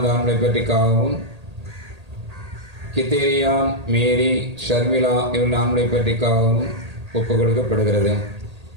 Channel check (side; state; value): left; late; 1.8 ms